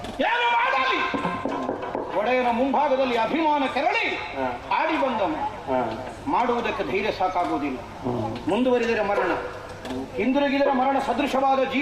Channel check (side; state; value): both; identical; correlation 1.00